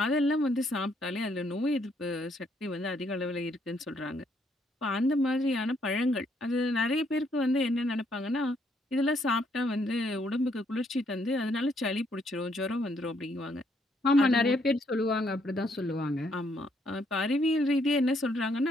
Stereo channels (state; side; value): normal; both; correlation 0.71